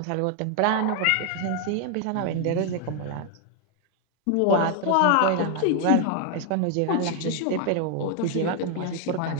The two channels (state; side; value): different; both; correlation 0.01